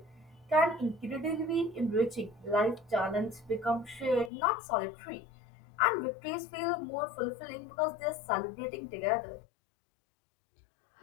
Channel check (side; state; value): right; drops out; at 4.3 s